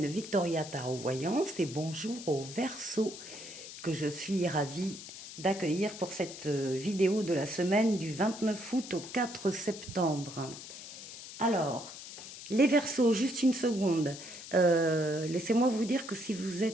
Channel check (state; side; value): noise; left; hiss, 13 dB below the sound